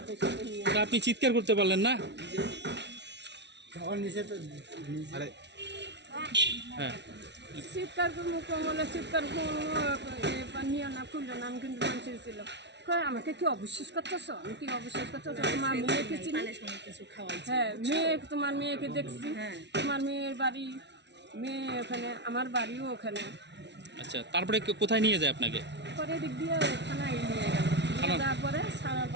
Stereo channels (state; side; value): late; left; 0.50 ms